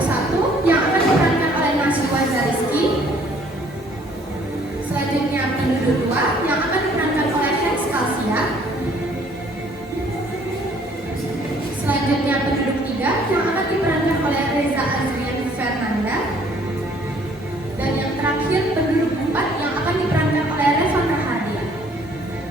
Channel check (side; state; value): both; normal; correlation 0.60